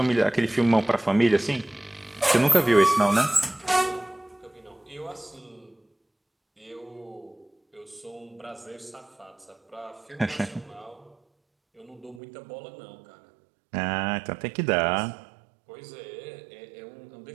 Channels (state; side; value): drops out; left; at 12.2 s